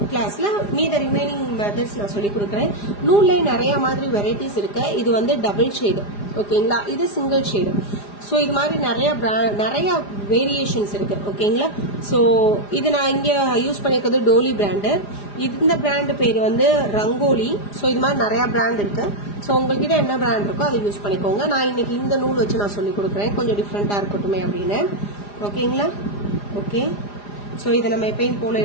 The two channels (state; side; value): late; right; 4.9 ms